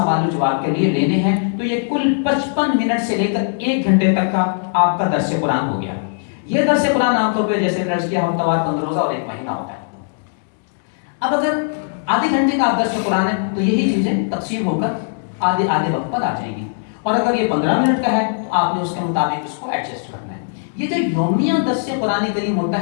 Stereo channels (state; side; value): silent; right; digital silence